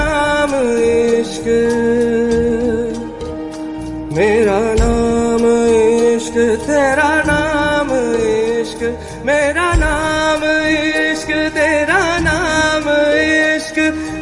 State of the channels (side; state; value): both; identical; correlation 1.00